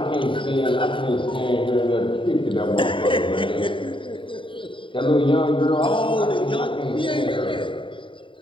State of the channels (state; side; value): late; right; 0.25 ms